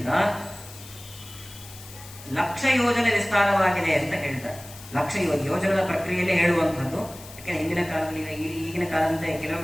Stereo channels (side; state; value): left; noise; hiss, 17 dB below the sound